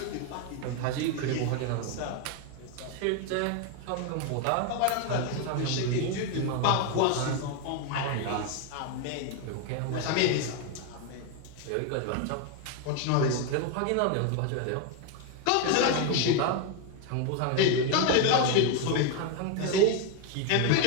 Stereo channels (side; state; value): both; different; correlation 0.01